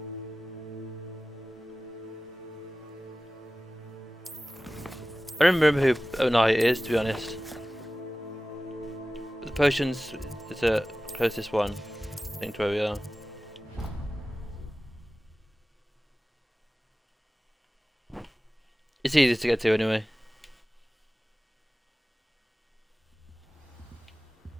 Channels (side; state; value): both; normal; correlation 0.97